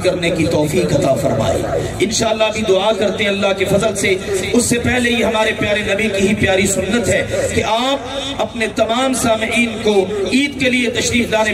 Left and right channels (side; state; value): both; identical; correlation 1.00